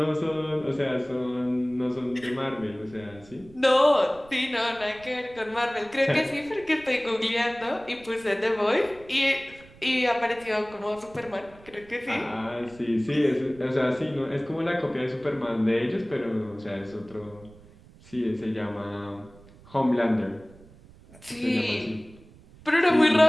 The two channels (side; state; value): right; noise; rumble, 23 dB below the sound